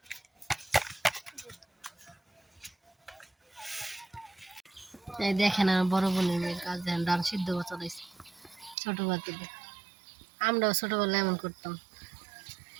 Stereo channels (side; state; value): left; drops out; at 8.8 s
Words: এই দেখেন আমার বড় বোনের মেয়ের কাজ, দেখেন ডাল সিদ্ধ চলাইছে ছোটবেলা থেকে। আমরাও ছোটবেলায় এমন করতাম,